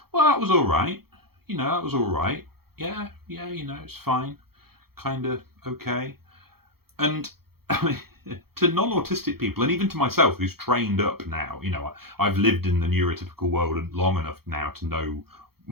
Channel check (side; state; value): left; late; 0.95 ms